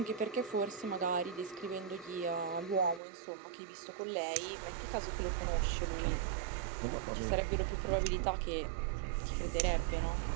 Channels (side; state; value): left; drops out; at 3.0 s